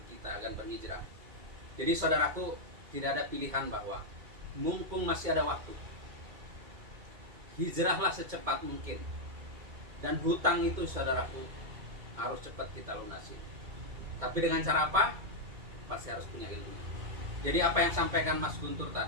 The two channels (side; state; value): left; late; 2.2 ms